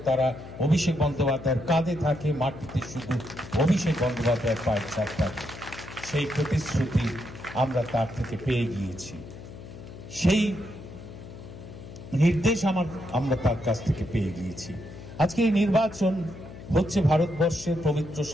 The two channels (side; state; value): left; noise; hum, 14 dB below the sound